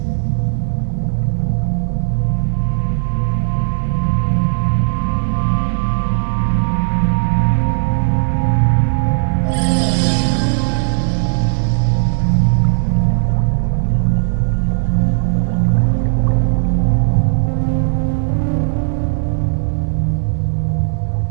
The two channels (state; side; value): silent; left; digital silence